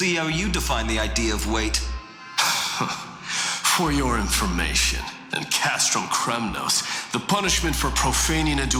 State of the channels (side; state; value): both; identical; correlation 1.00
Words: how you define the idea of weight. For your information, in Castrum Kremnos, the punishment for profaning a